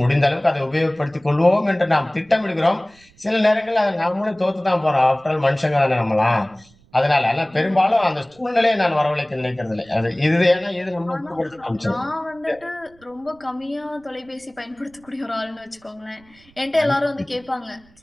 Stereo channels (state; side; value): noise; right; rumble, 30 dB below the sound